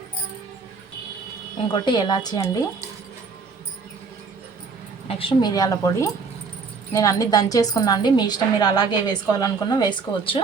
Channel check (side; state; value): left; quieter; 4.9 dB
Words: ఇంకోటి ఎలాచి అండి, నెక్స్ట్ మిరియాల పొడి. నేను అన్నీ దంచేసుకున్నా అండి, మీ ఇష్టం, మీరు అలాగే వేసుకోవాలనుకున్నా వేసుకోవచ్చు.